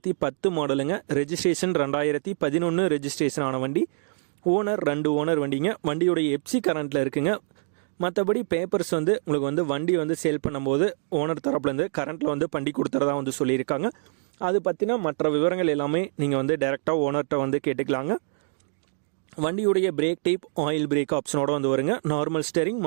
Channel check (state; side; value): silent; left; 61 dB below the other